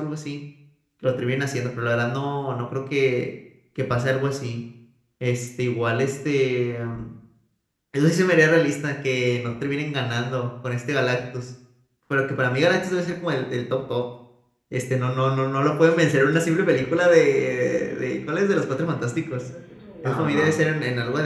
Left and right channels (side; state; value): both; identical; correlation 1.00